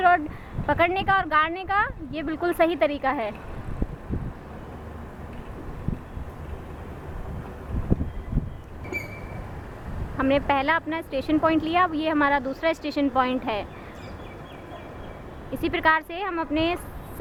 रॉड पकड़ने का और गाड़ने का ये बिल्कुल सही तरीका है। हमने पहला अपना स्टेशन पॉइंट लिया, अब ये हमारा दूसरा स्टेशन पॉइंट है। इसी प्रकार से हम अपने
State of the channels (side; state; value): both; identical; correlation 1.00